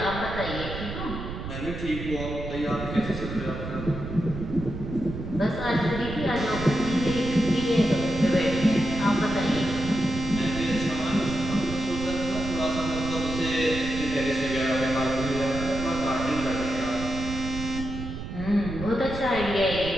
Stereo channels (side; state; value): right; noise; rumble, 7 dB below the sound